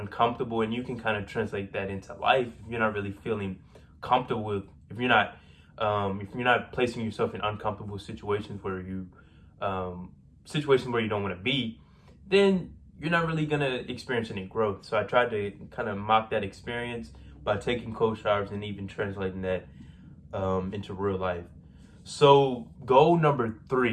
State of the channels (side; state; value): both; identical; correlation 1.00